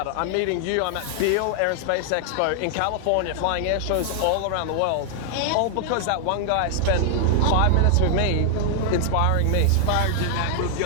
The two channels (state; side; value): different; both; correlation 0.00